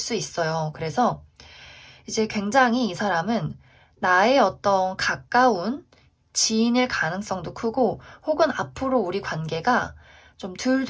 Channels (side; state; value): both; identical; correlation 1.00